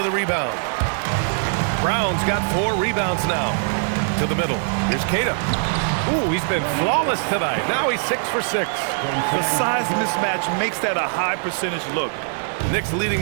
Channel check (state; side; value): silent; left; 58 dB below the other